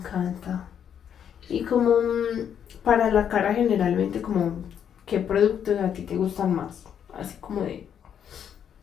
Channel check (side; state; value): right; quieter; 8.6 dB